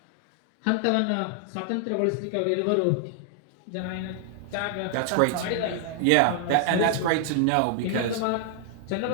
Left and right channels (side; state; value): both; different; correlation 0.00